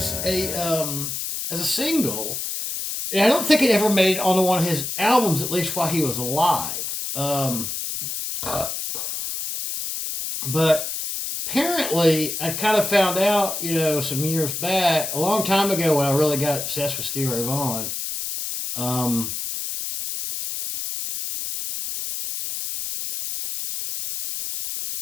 a single. And I don't think it ever made it onto one of his albums, at least while he was alive. But apparently, I kind of found out, you know, some years back, a long time ago when I really got obsessed with Stevie Ray Vaughan.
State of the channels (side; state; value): left; noise; hiss, 4 dB below the sound